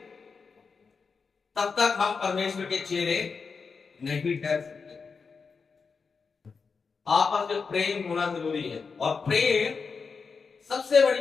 तब तक हम परमेश्वर के चेले नहीं ठहर सकते। आपस में प्रेम होना जरूरी है। और प्रेम सबसे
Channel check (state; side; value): quieter; right; 5.1 dB